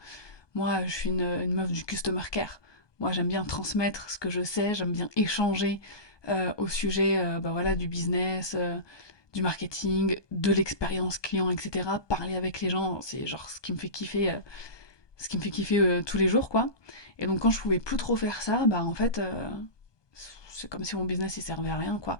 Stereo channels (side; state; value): right; late; 1.2 ms